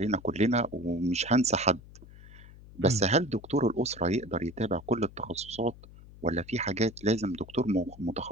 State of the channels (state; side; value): noise; left; hum, 19 dB below the sound